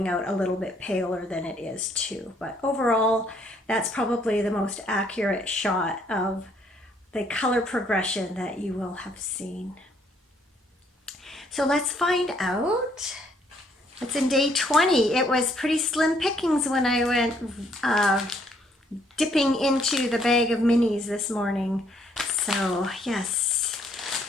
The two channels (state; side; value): normal; both; correlation 0.67